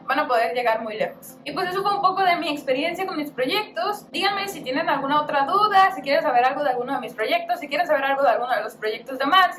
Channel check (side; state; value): both; identical; correlation 1.00